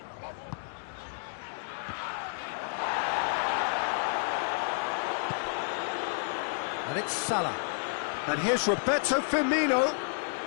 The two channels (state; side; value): silent; right; digital silence